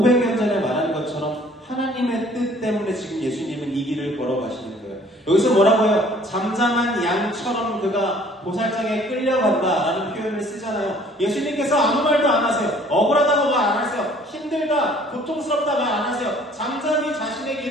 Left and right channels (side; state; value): both; normal; correlation 0.55